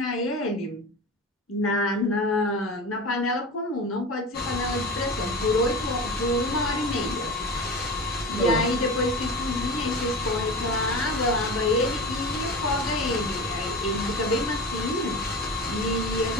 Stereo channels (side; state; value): both; normal; correlation 0.30